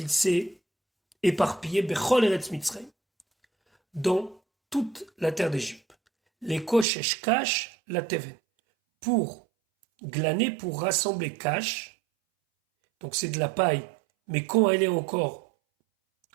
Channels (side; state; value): left; drops out; at 6.9 s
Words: s'est éparpillé, Bechol Eretz Mitzrayim, dans toute la terre d'Égypte. Les Koshesh Kash, la Teven. Pour glaner, pour rassembler cash, donc c'est de la paille, mais quand elle est encore